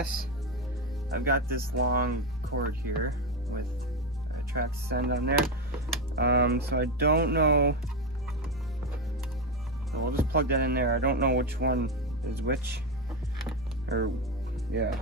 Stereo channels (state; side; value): normal; both; correlation 0.12